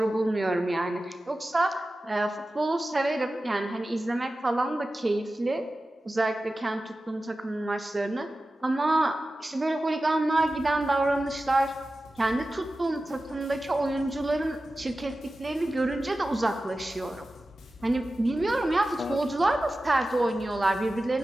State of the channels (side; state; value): both; normal; correlation 0.95